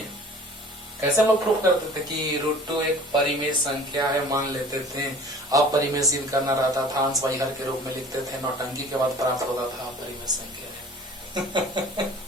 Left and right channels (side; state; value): both; normal; correlation 0.46